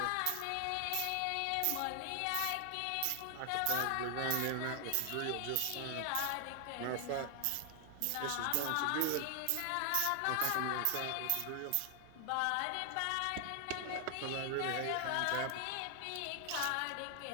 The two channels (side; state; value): both; different; correlation 0.00